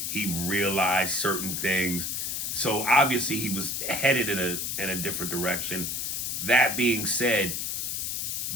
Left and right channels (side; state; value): left; noise; hiss, 2 dB below the sound